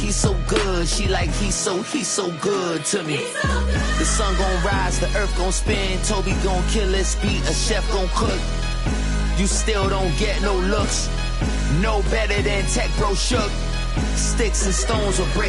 good. She like, he's so good to me. The sun gon' rise, the earth gon' spin. Toby gon' kill this beat, a chef gon' cook. You still don't get no looks. No better than Tech Bro Shook. Sticks and stones will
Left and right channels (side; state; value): both; identical; correlation 1.00